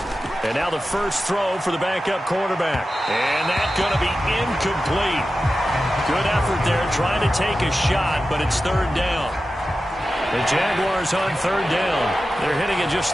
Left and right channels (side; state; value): both; normal; correlation 0.93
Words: And now the first throw for the backup quarterback. And that's going to be incomplete. Good effort there trying to take a shot, but it's third down. The Jaguars on third down. They're hitting at